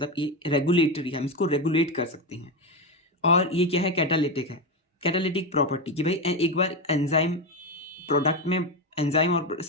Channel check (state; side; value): normal; both; correlation 0.13